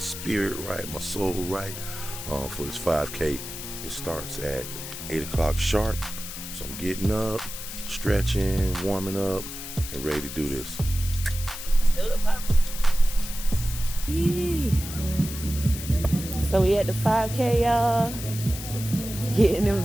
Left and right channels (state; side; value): noise; left; hiss, 9 dB below the sound